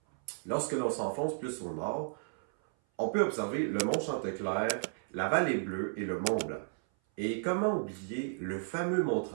Lorsque l'on s'enfonce plus au nord, on peut observer le mont Chanteclair, la vallée Bleue et le mont Blanc. Et comment oublier le fameux mont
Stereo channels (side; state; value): left; silent; 55 dB below the other